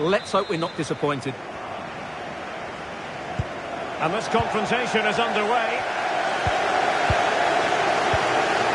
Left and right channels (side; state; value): both; identical; correlation 1.00